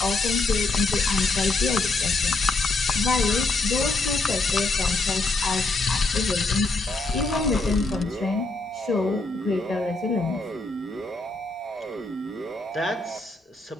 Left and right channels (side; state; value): right; quieter; 3.2 dB